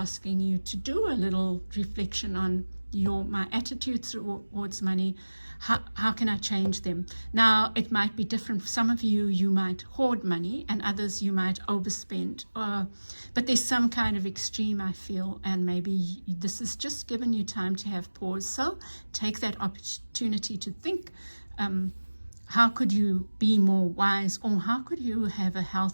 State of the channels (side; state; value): both; inverted; correlation -1.00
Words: you to do a little reflection on my attitudes towards money. How can I change them? Now, it might be different. For some of you, you might hoard money, and others you might overspend. But there's some kind of extreme, I feel, and maybe this has just given you time to have pause. So take that opportunity to think, how could you be more wise, or how could you have a